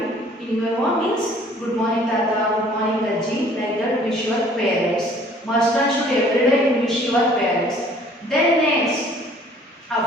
in your home means good morning tata, good morning Ajji, like that wish your parents. Must and should every day you wish your parents. Then next,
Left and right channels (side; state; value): both; normal; correlation 0.55